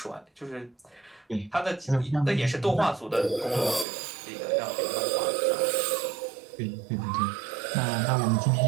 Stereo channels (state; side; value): drops out; left; at 3.9 s